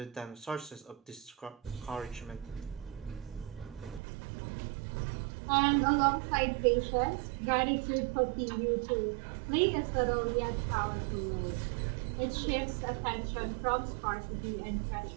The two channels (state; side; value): drops out; left; at 4.0 s